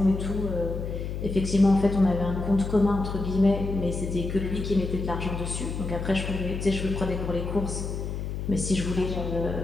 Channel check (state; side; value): noise; left; hum, 4 dB below the sound